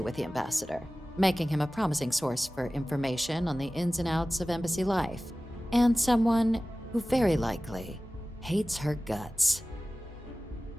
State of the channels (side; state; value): both; normal; correlation 0.97